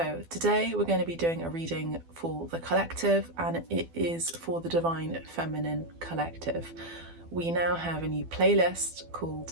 today we're going to be doing a reading for the collective, and it is for the Divine Feminine Collective. We now have a new playlist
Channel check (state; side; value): late; left; 12 ms